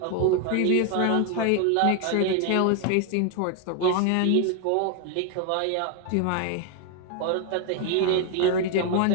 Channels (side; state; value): both; different; correlation 0.01